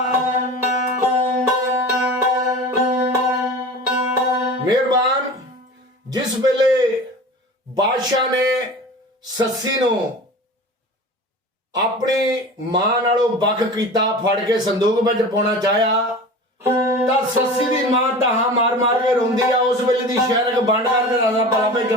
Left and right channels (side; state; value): both; normal; correlation 0.35